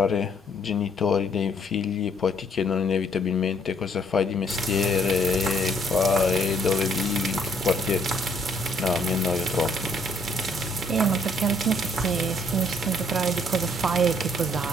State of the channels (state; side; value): normal; both; correlation 0.65